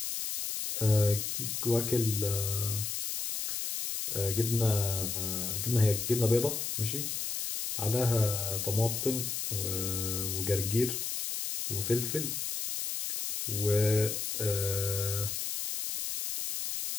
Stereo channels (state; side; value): noise; left; hiss, 3 dB below the sound